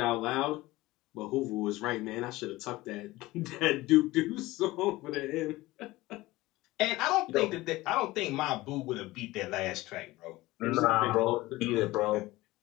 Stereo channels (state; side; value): quieter; right; 19.0 dB